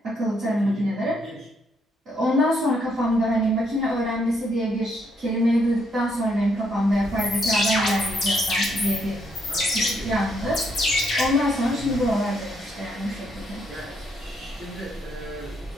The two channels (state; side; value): normal; both; correlation 0.74